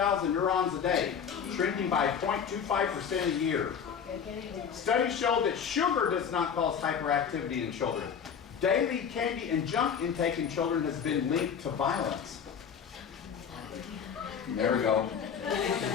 neurons a day, shrinking by 0.25% a year. Studies show that sugar does not cause hyperactivity in children. Daily candy and junk intake in children has been linked to violence. There we go.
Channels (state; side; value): quieter; right; 7.2 dB